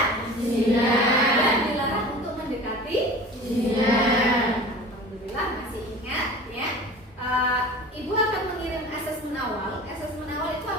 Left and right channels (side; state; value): both; normal; correlation 0.39